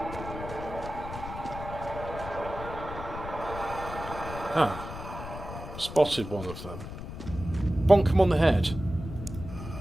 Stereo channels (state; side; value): noise; left; rumble, 10 dB below the sound